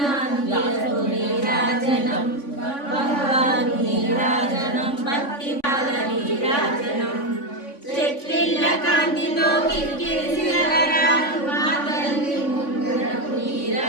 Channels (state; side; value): late; right; 3.5 ms